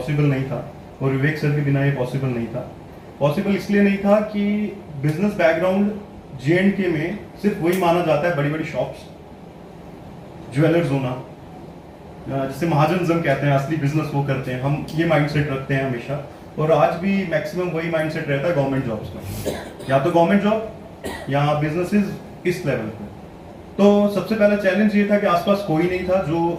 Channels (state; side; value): identical; both; correlation 1.00